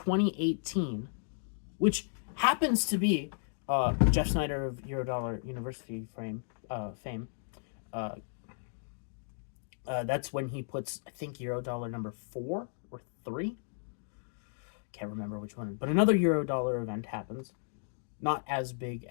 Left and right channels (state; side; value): silent; right; digital silence